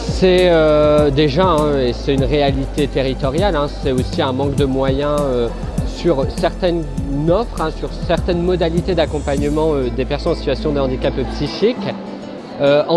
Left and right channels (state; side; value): identical; both; correlation 1.00